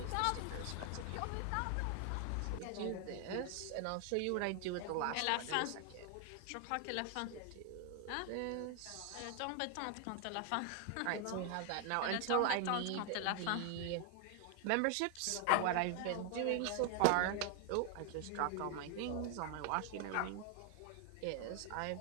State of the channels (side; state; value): both; different; correlation 0.00